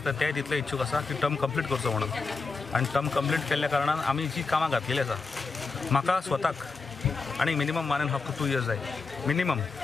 ते तितले इच्छूक आसा की टर्म कंप्लीट करचो म्हणून, आणि टर्म कंप्लीट केल्ल्या कारणान आमी जी कामां घातलेली आसा म्हाका स्वताक आणि मिनिमम 1.5 to 2 years जाय मिनिमम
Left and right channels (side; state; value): right; quieter; 4.3 dB